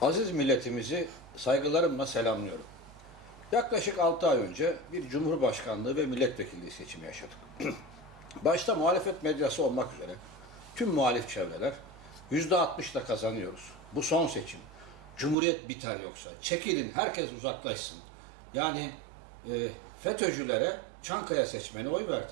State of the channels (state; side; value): drops out; left; at 15.4 s